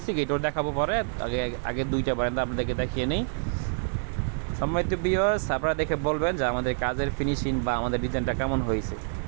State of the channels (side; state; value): left; silent; digital silence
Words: গেটও দেখাবো পরে। আগে দুইটা বারান্দা আপনাদেরকে দেখিয়ে নেই। সম্মানিত ভিউয়ার্স, আপনারা দেখে বলবেন যে আমাদের কাজের ফিনিশিং বা আমাদের ডিজাইনটা কেমন হয়েছে।